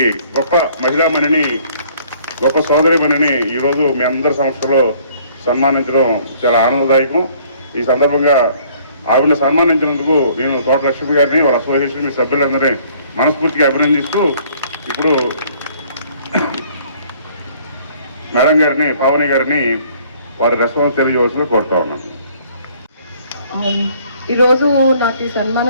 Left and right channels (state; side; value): inverted; both; correlation -0.59